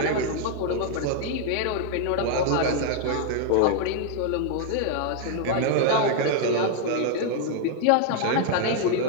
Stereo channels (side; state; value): both; different; correlation 0.00